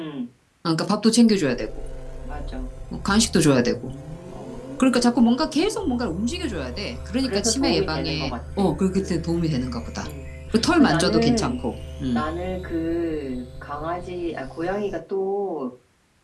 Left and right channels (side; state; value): both; identical; correlation 1.00